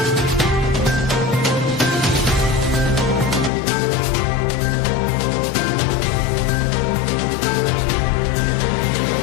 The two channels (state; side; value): drops out; right; at 3.5 s